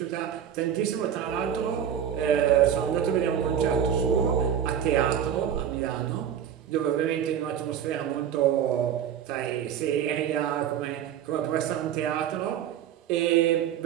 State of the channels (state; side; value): quieter; left; 9.3 dB